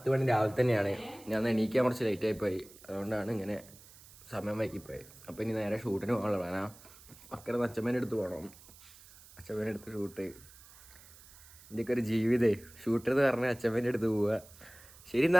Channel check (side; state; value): right; noise; hiss, 22 dB below the sound